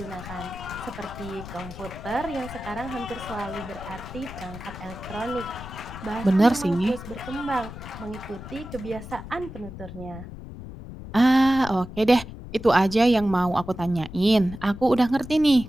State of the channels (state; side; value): noise; left; rumble, 12 dB below the sound